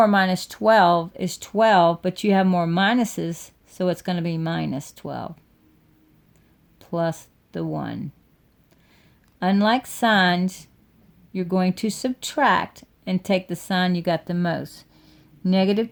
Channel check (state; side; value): identical; both; correlation 1.00